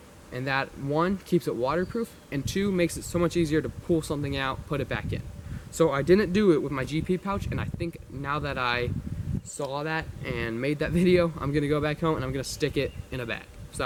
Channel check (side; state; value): both; identical; correlation 1.00